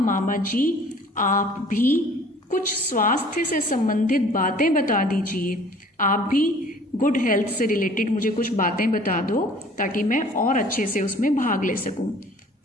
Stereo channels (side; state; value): both; normal; correlation 0.51